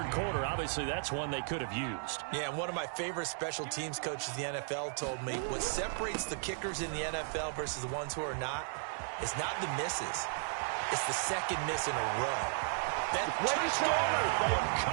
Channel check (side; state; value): left; silent; digital silence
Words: quarter, obviously that's one they could have used. Yeah, and one of my favorite special teams coaches in the NFL told me what separates the kickers in the NFL versus the ones who are not is not the misses. It's the second miss in a row. That touchdown for the